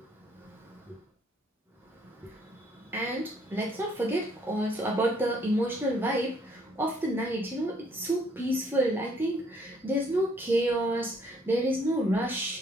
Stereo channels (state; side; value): normal; both; correlation 0.65